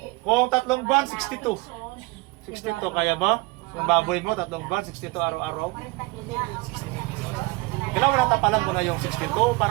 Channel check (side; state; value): left; quieter; 24.6 dB